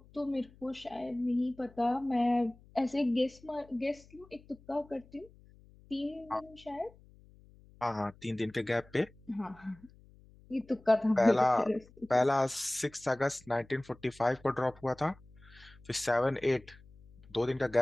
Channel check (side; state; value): left; noise; hum, 25 dB below the sound